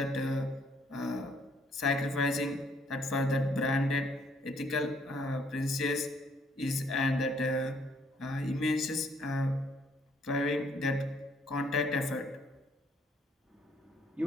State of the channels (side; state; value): both; normal; correlation 0.66